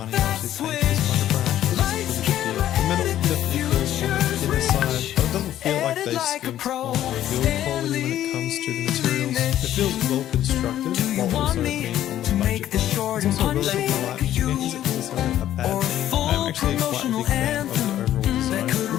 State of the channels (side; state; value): right; quieter; 12.2 dB